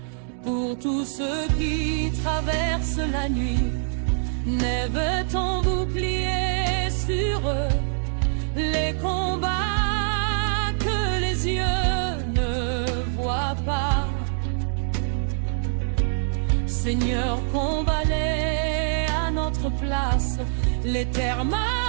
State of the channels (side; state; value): left; silent; digital silence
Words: Pour tous ceux qui traversent la nuit, lève ton bouclier sur eux. Les combats que les yeux ne voient pas, Seigneur, combat-les à notre place.